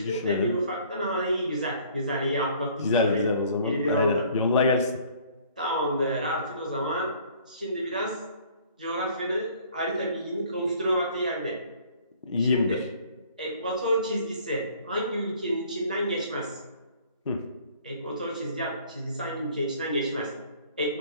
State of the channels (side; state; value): both; inverted; correlation -0.55